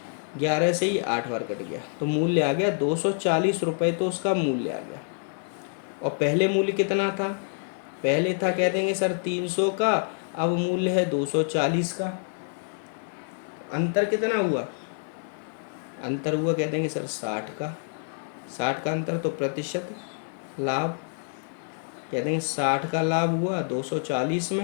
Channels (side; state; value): right; silent; 60 dB below the other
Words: 11 से ये 8 बार कट गया, तो मूल्य आ गया 240 रुपये, तो उसका मूल्य आ गया। और पहले मूल्य कितना था? पहले था कह देंगे सर 300 का, अब मूल्य है 240 का। अंतर कितना हुआ? अंतर हुआ कह देंगे सर 60 का। 60 का अंतर, तो प्रतिशत लाभ कह देंगे 60 का लाभ हुआ 240